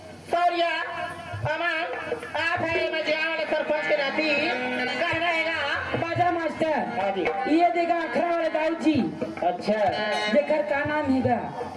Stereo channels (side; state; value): both; identical; correlation 1.00